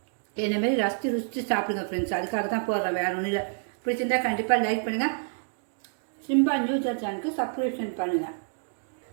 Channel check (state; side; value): silent; left; 59 dB below the other